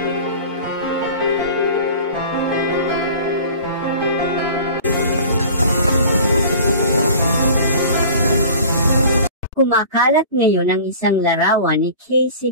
Kumakalat ngayon ang isang larawan ni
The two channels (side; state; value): both; inverted; correlation -0.42